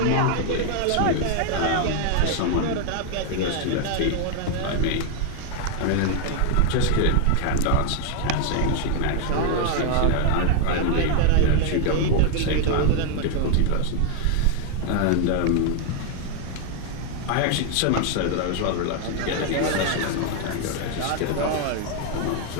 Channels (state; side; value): different; both; correlation 0.00